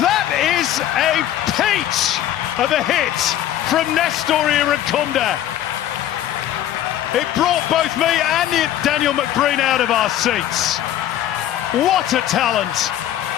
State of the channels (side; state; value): right; quieter; 12.1 dB